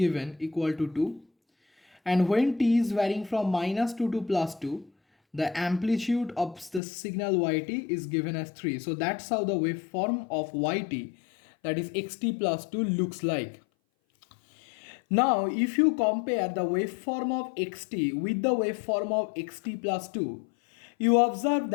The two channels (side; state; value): right; drops out; at 6.8 s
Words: equal to 2. And when t is varying from minus 2 to plus 2, the amplitude of the signal yt is given as 3. So that's how the waveform of yt, that is xt plus 2, looks like. Now if you compare the waveform of xt with the waveform of xt plus 2, you observe